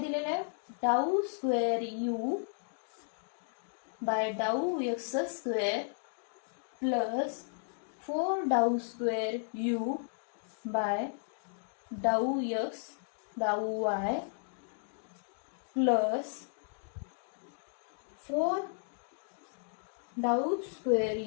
आहे, डाऊ स्क्वेअर यू बाय डाऊ एक्स स्क्वेअर प्लस 4 डाऊ स्क्वेअर यू बाय डाऊ एक्स डाऊ वाय प्लस 4 डाऊ स्क्वेअर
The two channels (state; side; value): silent; right; digital silence